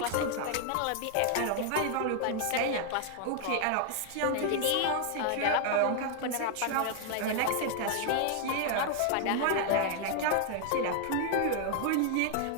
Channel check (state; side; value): different; both; correlation 0.00